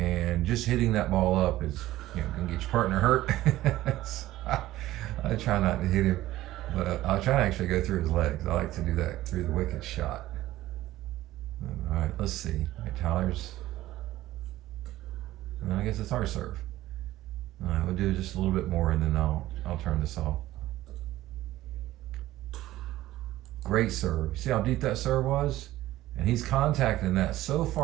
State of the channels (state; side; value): quieter; left; 15.6 dB